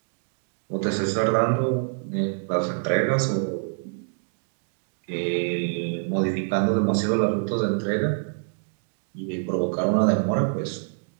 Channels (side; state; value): left; silent; digital silence